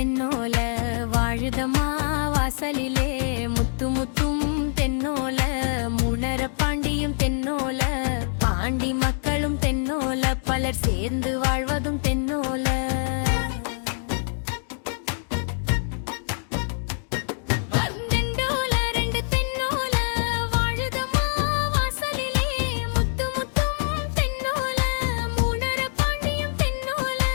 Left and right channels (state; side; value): silent; right; digital silence